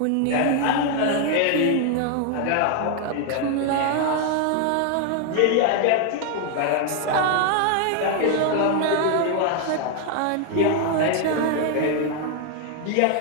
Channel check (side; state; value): both; different; correlation 0.00